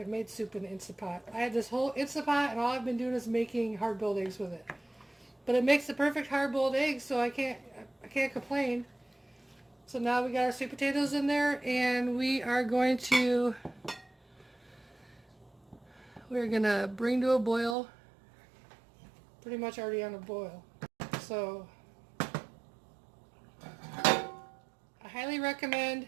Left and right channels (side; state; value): left; drops out; at 17.8 s